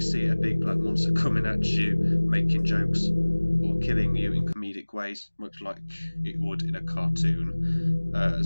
see a big black monster coming at you, making jokes, or killing you in comedic ways, much like it would in a cartoon,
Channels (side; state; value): both; inverted; correlation -1.00